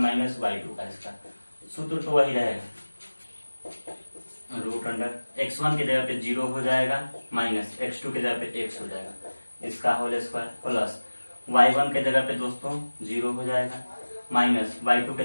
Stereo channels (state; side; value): inverted; both; correlation -1.00